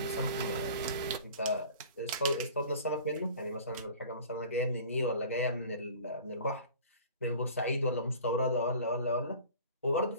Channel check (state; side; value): inverted; both; correlation -0.44